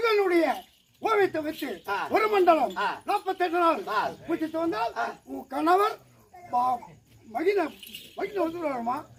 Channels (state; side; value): identical; both; correlation 1.00